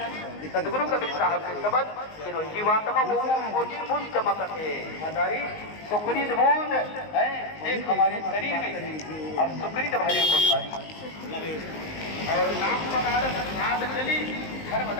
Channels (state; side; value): late; right; 19 ms